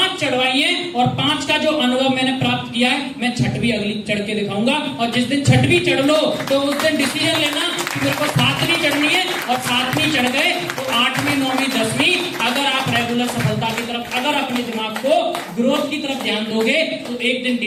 चढ़वाई है, और 5 का जो अनुभव मैंने प्राप्त किया है, मैं 6वीं अगली चढ़ के दिखाऊंगा। और जिस दिन 6वीं चढ़ लो तो उस दिन डिसीजन लेना कि मेरे को 7वीं चढ़नी है, और 7वीं चढ़ गए तो 8वीं 9वीं 10वीं। अगर आप रेगुलर सफलता की तरफ, अगर अपने दिमाग को ग्रोथ की तरफ ध्यान दोगे तो एक दिन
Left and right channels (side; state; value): both; identical; correlation 1.00